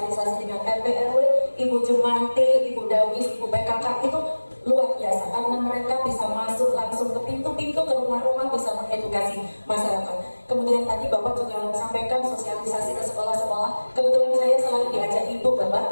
dengan RT RW, Ibu Jumanti, Ibu Dawis, Ibu PKK itu luar biasa karena mereka bisa masuk langsung ke pintu-pintu, ke rumah-rumah, bisa mengedukasi masyarakat. Kemudian tadi Bapak juga sampaikan sosialisasi ke sekolah-sekolah. Kebetulan saya selalu diajak Ibu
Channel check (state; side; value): inverted; both; correlation -1.00